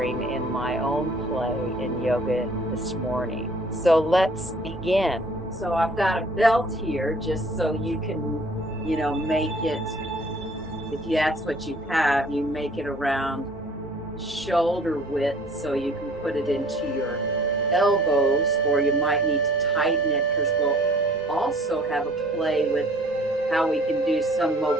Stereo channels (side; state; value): both; normal; correlation 0.53